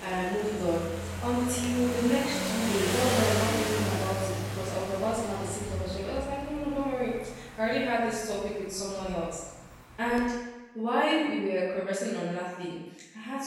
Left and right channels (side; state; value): both; identical; correlation 1.00